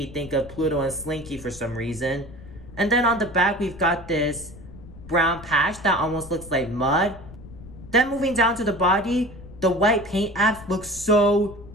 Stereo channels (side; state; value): left; noise; rumble, 17 dB below the sound